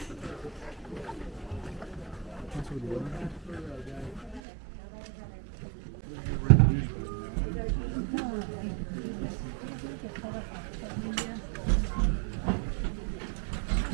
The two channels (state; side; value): drops out; left; at 4.4 s